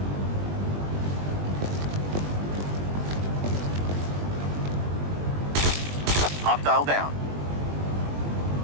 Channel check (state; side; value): late; left; 20 ms